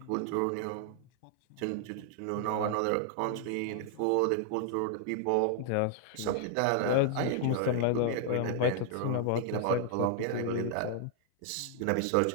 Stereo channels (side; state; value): both; different; correlation 0.00